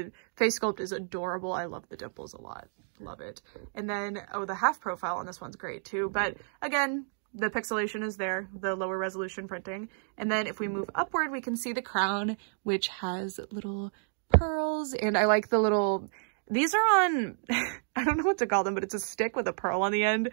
face sculpt is adorable. I love the dimples a lot. Love it. And then, oh, the half profile on this one's great too, but again, the pixelation is there, the lower resolution printing. And then if we move upward, we can see the crown, which has little pearls, and I like the little, these are on I don't know what to call them, but it's a stick with a pearl on the end.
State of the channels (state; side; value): silent; left; digital silence